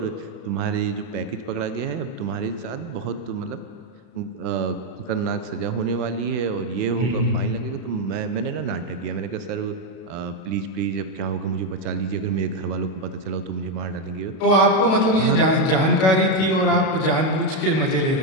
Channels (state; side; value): late; right; 32 ms